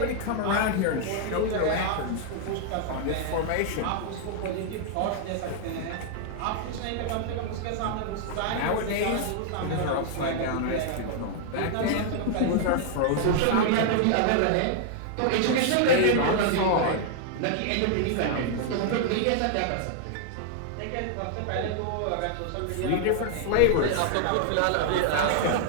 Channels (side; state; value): both; different; correlation 0.00